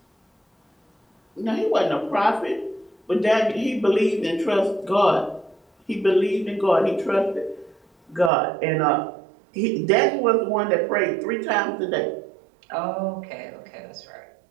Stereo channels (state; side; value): drops out; left; at 8.3 s